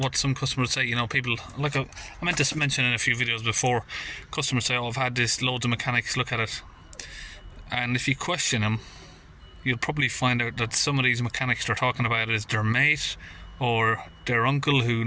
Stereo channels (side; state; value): both; identical; correlation 1.00